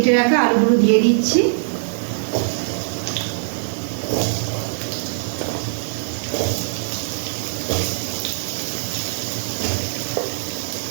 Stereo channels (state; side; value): silent; left; digital silence